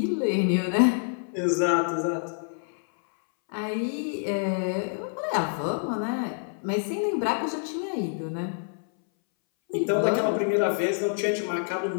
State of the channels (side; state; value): right; silent; 60 dB below the other